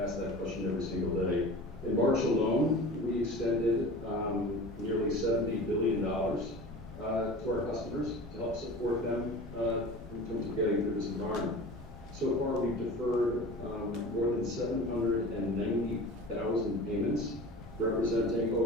that question every single day. In March alone, we extended nearly $70 billion to our customers to help support them in terms of getting through this environment. So far, we've deferred more than 790,000 payments, representing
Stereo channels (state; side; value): normal; both; correlation 0.37